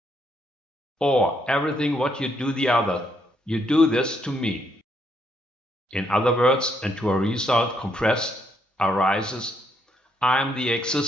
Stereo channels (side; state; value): both; normal; correlation 0.74